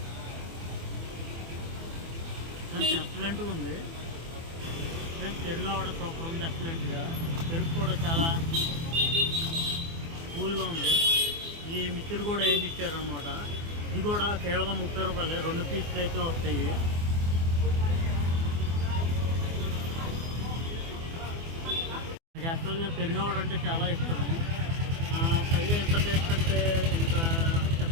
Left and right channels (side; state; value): left; late; 24 ms